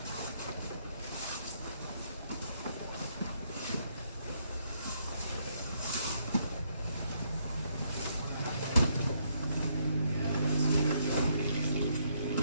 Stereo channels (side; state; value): both; inverted; correlation -0.73